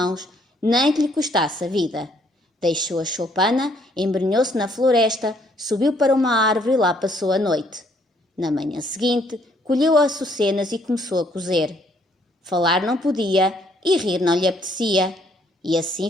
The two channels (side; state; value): both; normal; correlation 0.66